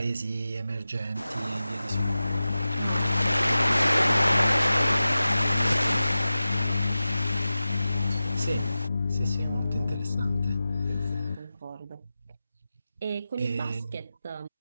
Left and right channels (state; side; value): inverted; both; correlation -0.94